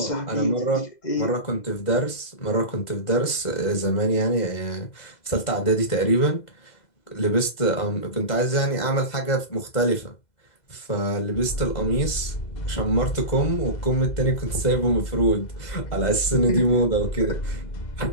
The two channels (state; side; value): late; right; 2.0 ms